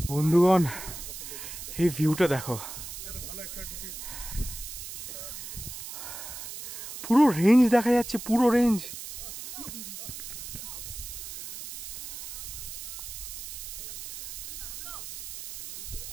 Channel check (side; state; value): right; noise; hiss, 9 dB below the sound